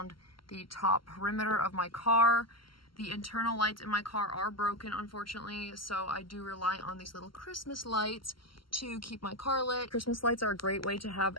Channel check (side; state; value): right; late; 0.73 ms